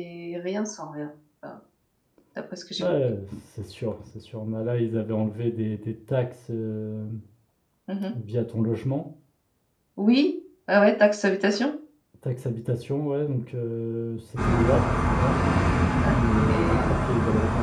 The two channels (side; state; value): both; identical; correlation 1.00